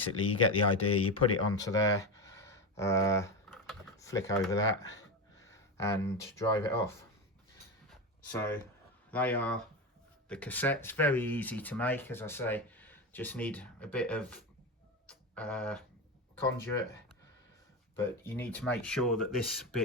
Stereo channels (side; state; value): both; normal; correlation 0.18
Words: you get the idea. You put it onto there, flick over that and drive it off. So they are the cassettes. Very easy to make, as I say. Just need a bit of conduit, but you need to make sure that this